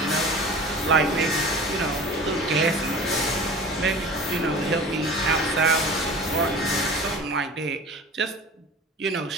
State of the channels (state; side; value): normal; both; correlation 0.39